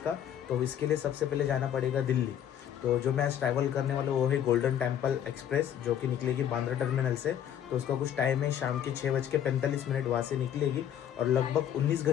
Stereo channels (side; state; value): right; quieter; 9.9 dB